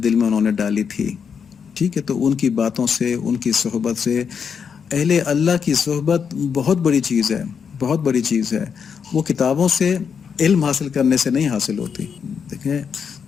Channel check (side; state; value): right; quieter; 6.7 dB